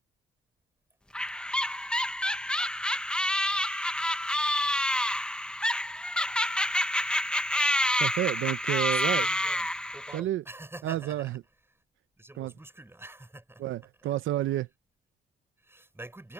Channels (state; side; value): normal; both; correlation 0.65